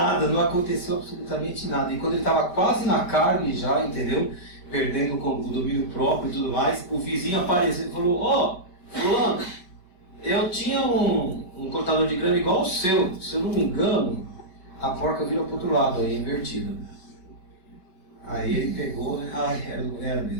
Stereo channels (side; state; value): right; late; 5.2 ms